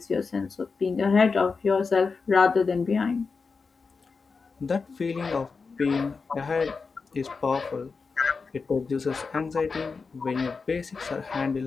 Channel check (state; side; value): quieter; right; 4.7 dB